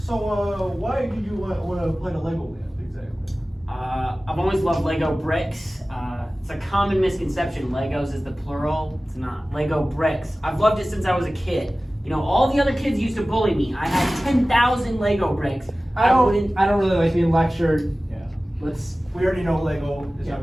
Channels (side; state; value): both; normal; correlation 0.97